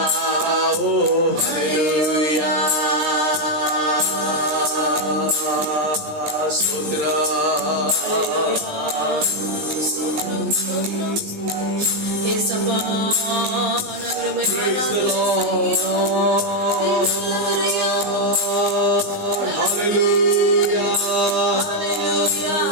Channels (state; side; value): late; left; 19 ms